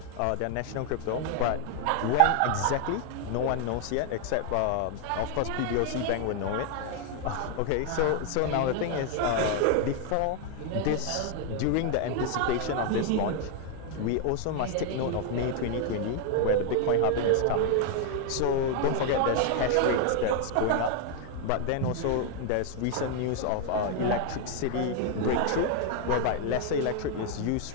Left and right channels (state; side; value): different; both; correlation 0.00